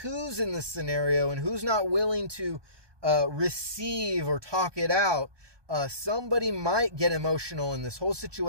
in the scenario and who's not willing to receive or talk it out. Somebody might get emotional in this whole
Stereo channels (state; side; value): late; left; 1.2 ms